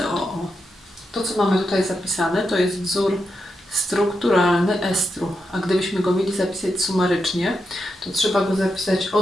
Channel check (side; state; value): both; normal; correlation 0.85